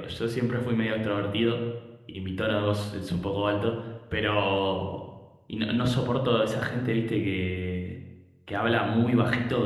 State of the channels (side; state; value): both; identical; correlation 1.00